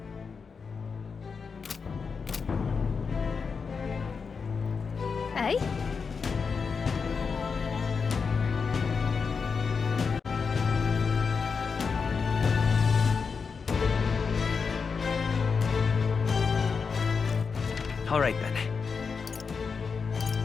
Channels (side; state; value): right; quieter; 5.4 dB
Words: Eh? All right then.